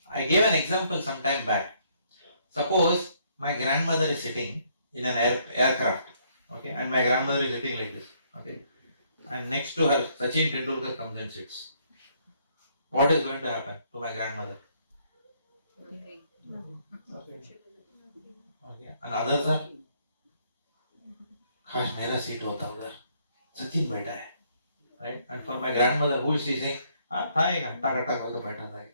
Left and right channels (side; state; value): both; inverted; correlation -0.68